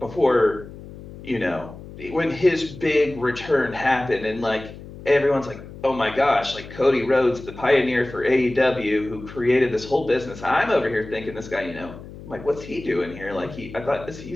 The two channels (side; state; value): left; noise; hum, 15 dB below the sound